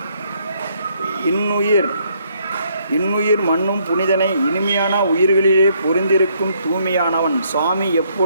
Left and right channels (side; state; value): both; inverted; correlation -0.70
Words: இன்னுயிர் மண்ணும் புனிதனை இனிமையான உயிர்களிலே பொருந்திருக்கும் தூய்மையானவன் சுவாமி